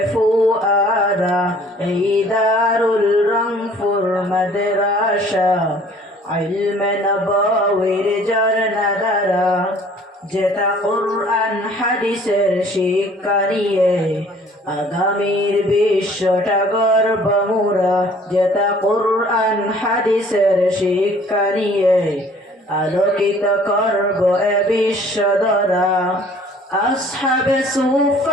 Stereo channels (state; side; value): normal; both; correlation 0.54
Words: ফুয়ারা। এই দারুল রংপুর মাদ্রাসা ইলমে নববীর ঝরনা ধারা। যেটা কুরআন হাদিসের শিক্ষা নিয়ে আগামীর বিশ্বটা গর্ব মোরা। যেটা কুরআন হাদিসের শিক্ষা নিয়ে আলোকিত করব এ বিশ্ব ধরা। আসহাবে